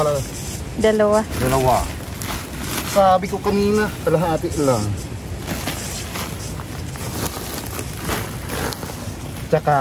2. Sabi ko kanina, kalahati lang.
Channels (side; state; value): both; identical; correlation 1.00